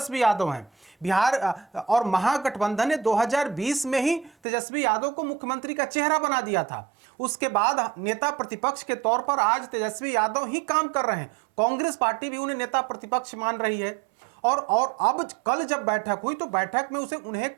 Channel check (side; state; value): left; drops out; at 4.3 s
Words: यादव हैं। बिहार और महागठबंधन ने 2020 में ही तेजस्वी यादव को मुख्यमंत्री का चेहरा बना दिया था। उसके बाद नेता प्रतिपक्ष के तौर पर आज तेजस्वी यादव ही काम कर रहे हैं। कांग्रेस पार्टी भी उन्हें नेता प्रतिपक्ष मान रही है। और अब कल जब बैठक हुई तो बैठक में उन्हें